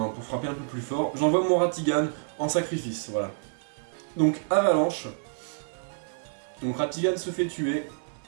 frapper un peu plus fort. J'envoie mon Ratigan en sacrifice, voilà. Donc, Avalanche. Donc, Ratigan se fait tuer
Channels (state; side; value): silent; left; digital silence